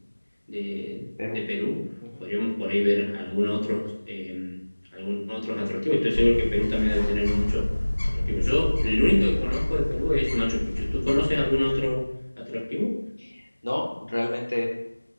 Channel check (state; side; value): inverted; both; correlation -1.00